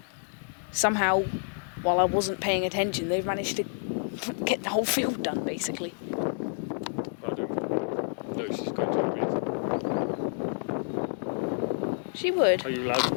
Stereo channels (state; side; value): silent; right; digital silence